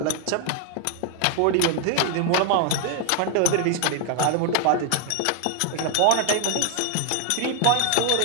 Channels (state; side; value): different; both; correlation 0.00